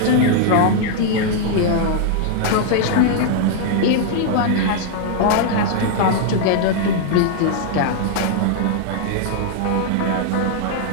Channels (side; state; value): both; different; correlation 0.00